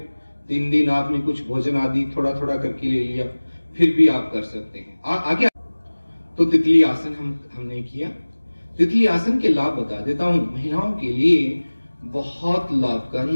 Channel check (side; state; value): both; inverted; correlation -1.00